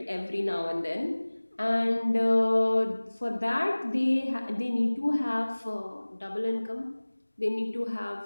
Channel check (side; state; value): both; inverted; correlation -1.00